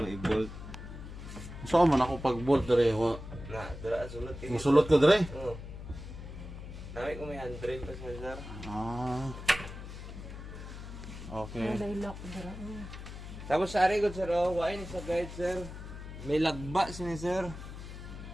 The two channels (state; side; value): noise; left; hum, 11 dB below the sound